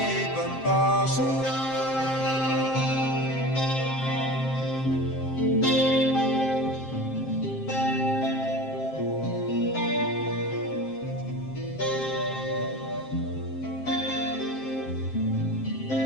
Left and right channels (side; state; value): right; late; 7.6 ms